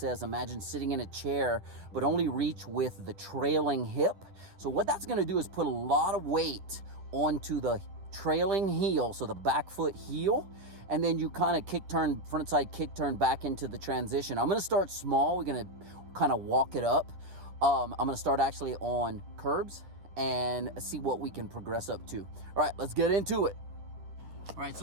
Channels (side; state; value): left; late; 10 ms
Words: imagine sitting in a chair, but only reach with the trailing hip. So what that's going to do is put a lot of weight onto the trailing heel, so the back foot heel. And then you kind of frontside kick turn back into the transition. I'm gonna start small. We're gonna kind of walk it up. I'm gonna start actually on curbs and see what we can progress up to. All right, let's get into it. All right,